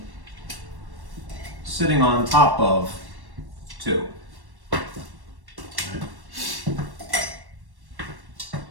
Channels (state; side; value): late; left; 1.1 ms